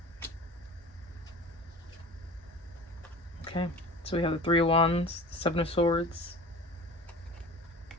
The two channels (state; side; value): normal; both; correlation 0.38